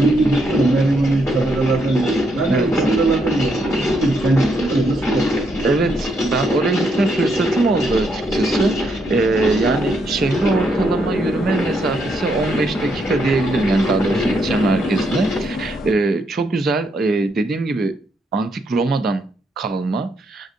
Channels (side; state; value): both; normal; correlation 0.76